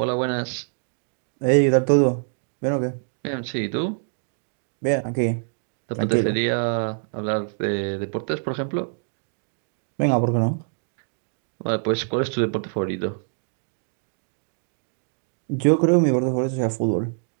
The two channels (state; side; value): silent; left; digital silence